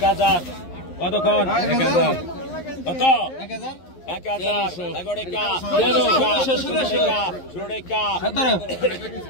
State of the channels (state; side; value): late; right; 11 ms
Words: কতক্ষণ 1000 কত 1000 এগোড়েকা 16কা